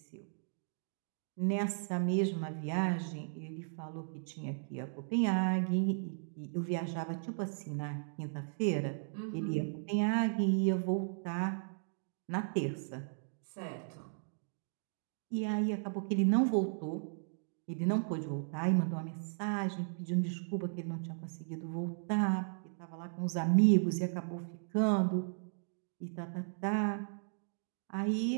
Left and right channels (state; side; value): silent; left; digital silence